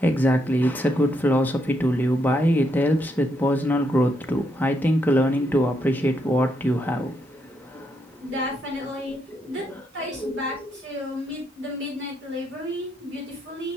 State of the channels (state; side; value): normal; both; correlation 0.78